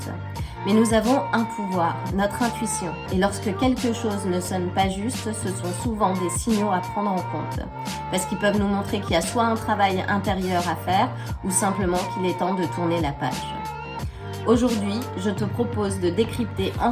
Mais nous avons un pouvoir, notre intuition. Et lorsque quelque chose ne sonne pas juste, ce sont souvent des signaux à prendre en compte. Parce qu'ils peuvent nous montrer qu'il y a soit un travail intérieur à faire, ou simplement qu'il est temps de tourner la page. Aujourd'hui, je te propose de décrypter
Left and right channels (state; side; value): identical; both; correlation 1.00